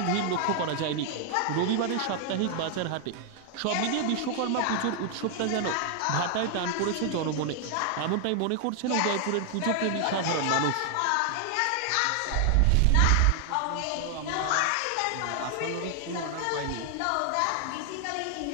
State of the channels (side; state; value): both; different; correlation 0.00